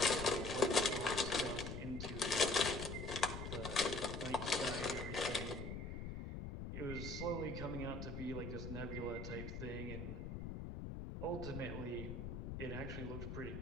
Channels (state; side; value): noise; left; rumble, 6 dB below the sound